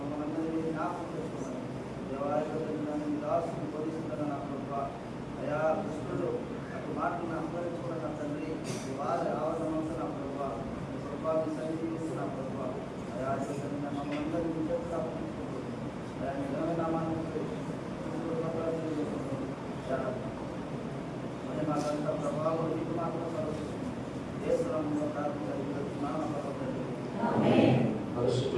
మనందరినీ జ్ఞాపకం చేసుకోవాలి. దేవాలయం దాసుని బోధిస్తున్న నా ప్రభా అయా కృష్ణుడు అటు మాటలను అనుభవించుకున్న నా తండ్రి వారి ఆవరణంతో నా ప్రభా ప్రభావం సన్నిధిస్తూ నా ప్రభా అయా మమ్మల్ని అందరినీ చేతులు అప్పగించుకుంటూ అయా నిజమైన నామాన్ని మరి మాకంతా ప్రభావం నీకు మాత్రం సర్వస్తుంది దేశంలో ప్రార్థించాలి.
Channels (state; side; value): identical; both; correlation 1.00